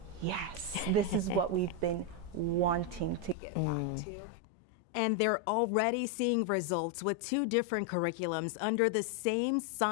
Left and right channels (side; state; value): right; drops out; at 3.4 s